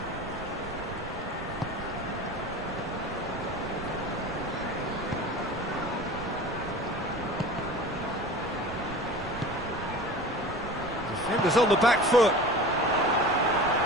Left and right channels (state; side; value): noise; right; rumble, 12 dB below the sound